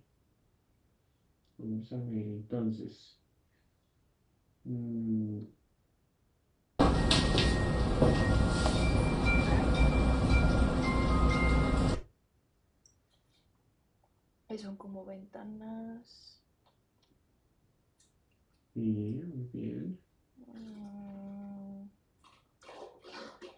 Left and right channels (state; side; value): identical; both; correlation 1.00